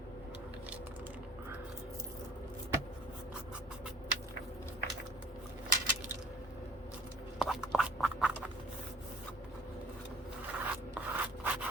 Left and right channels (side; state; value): both; normal; correlation 0.52